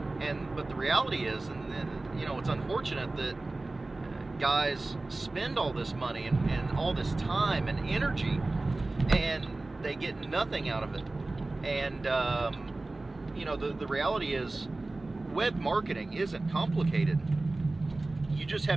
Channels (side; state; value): left; quieter; 3.1 dB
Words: But the reality is, and you know, it's unfortunate that guys spend all this money and all this time and energy, and they get nothing out of it. And you know, the reality is, web marketing isn't complicated. You just